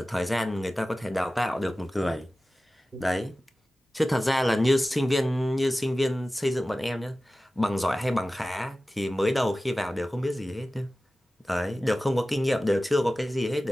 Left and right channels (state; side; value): normal; both; correlation 0.96